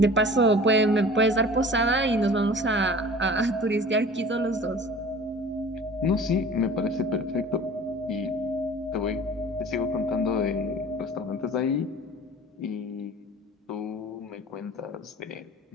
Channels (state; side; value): normal; both; correlation 0.43